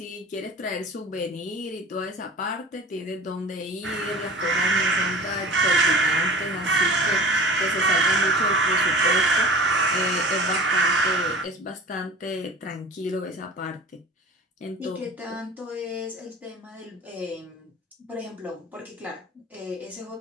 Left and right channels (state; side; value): normal; both; correlation 0.40